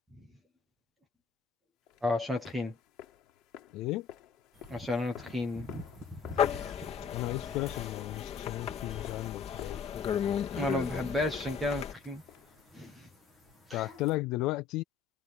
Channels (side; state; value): right; quieter; 5.9 dB